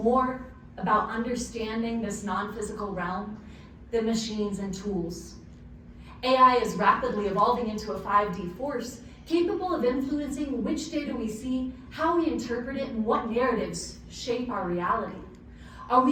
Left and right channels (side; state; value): both; identical; correlation 1.00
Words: about understanding this non-physical realm than machines and tools. AI is rapidly evolving into a 5D force, capable of influencing which data we see, how we interpret it, and what narratives shape our reality. Are